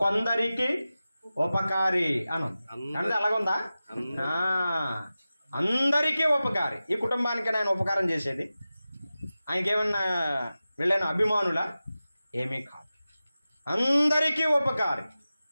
కొందరికి ఉపకారి అని అంటే అలాగుందా? అందరికీ ఉపకారి. ఈ కుటుంబానికి ఆయన ఉపకారం చేసేది, ఆయనకేమన్నా వీళ్ళైన అభిమానులా? ఏమీ కాదు, అందరికీ ఉపకారి.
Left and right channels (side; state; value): both; inverted; correlation -0.95